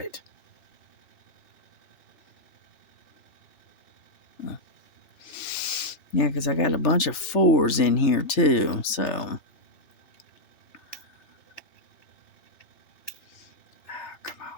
Yeah, because I got a bunch of 4s in here too, so. Come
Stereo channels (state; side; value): late; right; 3.3 ms